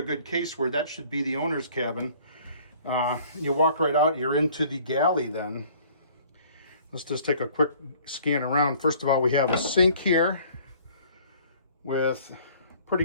good case where that should be the owner's cabin. You walk right out, you're into the galley then. Let's just take a quick scan around. First of all, we have a sink here with pretty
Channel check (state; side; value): inverted; both; correlation -0.54